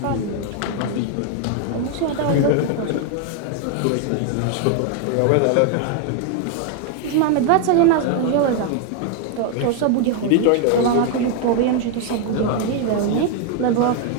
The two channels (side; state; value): both; different; correlation 0.01